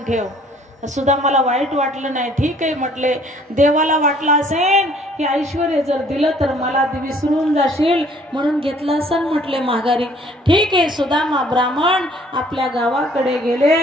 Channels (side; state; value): both; normal; correlation 0.58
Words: ठेव. सुद्धा मला वाईट वाटलं नाही. ठीक आहे म्हटले, देवाला वाटलं असेल की ऐश्वर्य जर दिलं तर मला विसरून जाशील म्हणून घेतलं असेल म्हटले माघारी. ठीक आहे. सुदामा ब्राह्मण आपल्या गावाकडे गेले